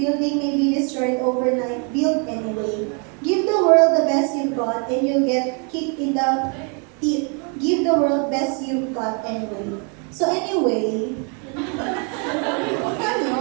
may be destroyed overnight. Build anyway. Give the world the best you've got and you'll get kicked in the teeth. Give the world best you've got anyway. So anyway,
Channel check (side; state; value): left; quieter; 37.3 dB